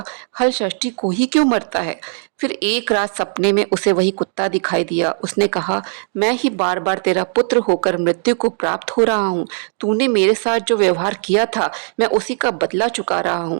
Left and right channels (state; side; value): silent; left; 63 dB below the other